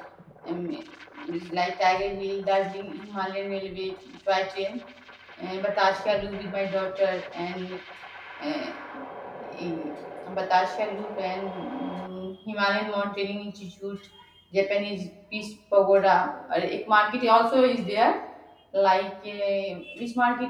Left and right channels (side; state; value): both; identical; correlation 1.00